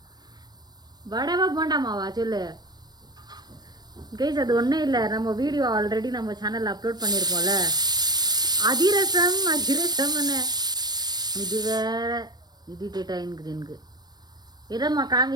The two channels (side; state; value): left; late; 0.19 ms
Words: வடைவா போண்டா மாவா சொல்லு கைஸ். அது ஒன்றும் இல்லை, நம்ம வீடியோ ஆல்ரெடி நம்ம சேனலில் அப்லோட் பண்ணியிருப்போம்ல, அதிரசம் அதிரசம்னு. இது வேற இரிட்டேட் ஆகிருக்குது எனக்கு. எதம்மா